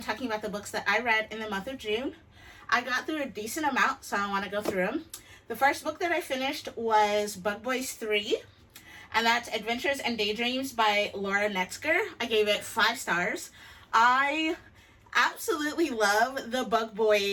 talking about the books that I read in the month of June. I got through a decent amount, so I want to go through them. The first book that I finished was Bug Boys 3, and that's Adventures and Daydreams by Laura Netzger. I gave it 5 stars. I absolutely love the Bug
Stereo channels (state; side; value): identical; both; correlation 1.00